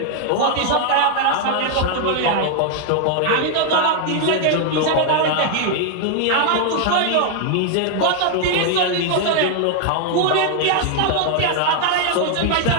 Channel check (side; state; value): both; different; correlation 0.00